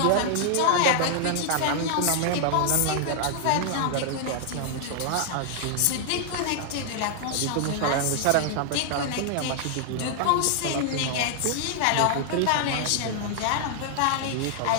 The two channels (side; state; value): both; different; correlation 0.00